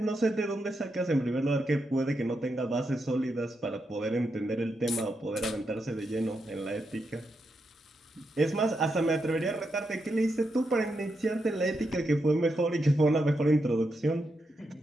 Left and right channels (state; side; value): normal; both; correlation 0.84